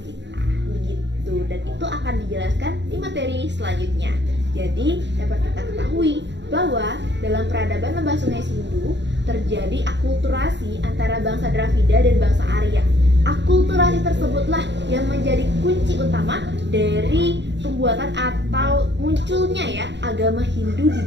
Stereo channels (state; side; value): late; left; 0.52 ms